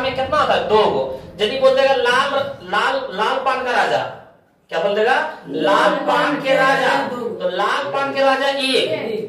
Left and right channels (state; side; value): identical; both; correlation 1.00